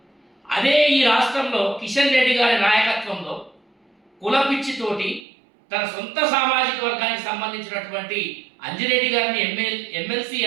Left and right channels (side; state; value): left; drops out; at 5.2 s